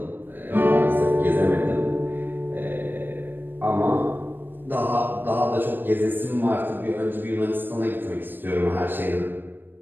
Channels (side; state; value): left; late; 0.094 ms